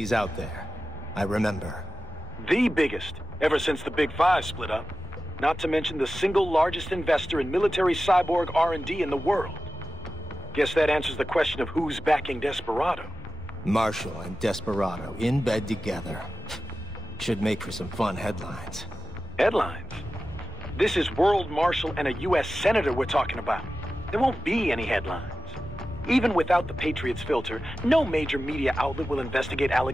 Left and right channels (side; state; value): both; normal; correlation 0.93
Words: out there. I remember. The biggest, ever since the Big Five split up. Not to mention the single largest investor in military cyborg R&D in the world. Guess that answers the question of who's backing Desperado. Marshall and Desperado in bed together. Should make for some fun headlines. Headlines? This is World Marshal and a U.S. Senator we're talking about. There won't be any headlines. Even without the Patriots filter, no major media outlet will investigate